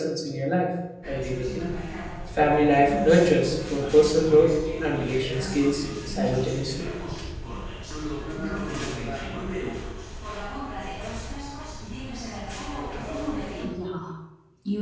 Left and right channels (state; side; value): identical; both; correlation 1.00